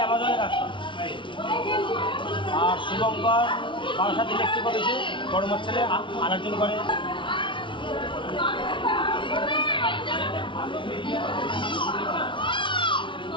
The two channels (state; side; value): late; right; 0.24 ms